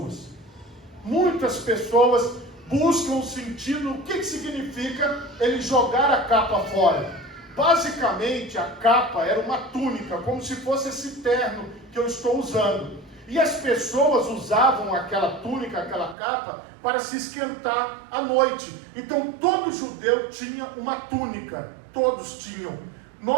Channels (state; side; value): drops out; left; at 16.2 s